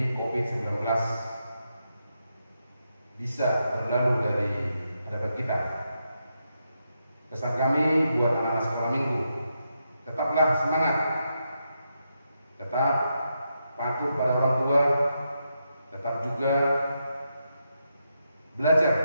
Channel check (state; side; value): inverted; both; correlation -0.84